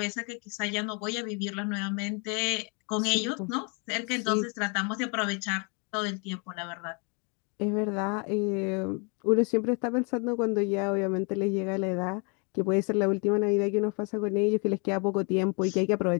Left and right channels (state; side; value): quieter; right; 34.6 dB